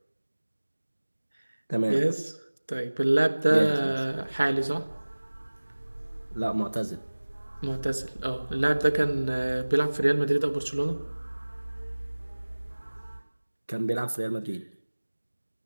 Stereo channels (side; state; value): both; inverted; correlation -1.00